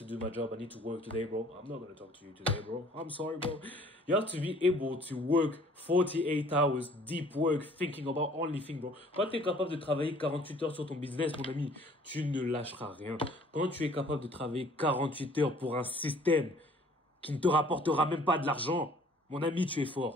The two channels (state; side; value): normal; both; correlation 0.55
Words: do my job. I need to work today, bro. I'm not going to talk to you today, bro. I'm sorry, bro. You have to be able to work 48 hours, deep work, thinking about only thing, bro. Quand tu es capable de travailler 48 heures sur ton business, mon ami, tu ne lâcheras rien. Quand tu es capable de travailler 48 heures pour un système qui ne te rapportera même pas de l'argent, mon ami, tu es